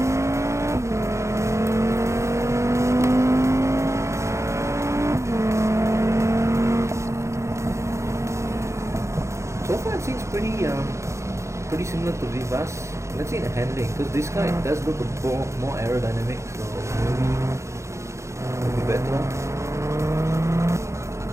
So far it seems pretty similar to Vivace. Let's see the handling, because this guy does look a more aerodynamic, so maybe it'll be better.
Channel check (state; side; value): late; left; 0.14 ms